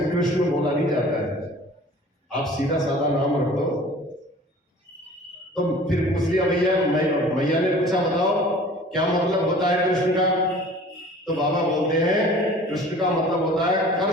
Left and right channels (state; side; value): normal; both; correlation 0.46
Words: कृष्ण बोला नहीं जाता है, आप सीधा साधा नाम रख दो। तो फिर पूछ लिया भैया, मैया ने पूछा बताओ क्या मतलब होता है कृष्ण का? तो बाबा बोलते हैं कृष्ण का मतलब होता है